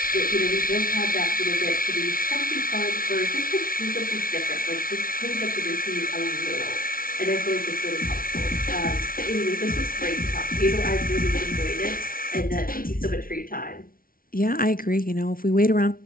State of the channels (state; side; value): late; right; 0.42 ms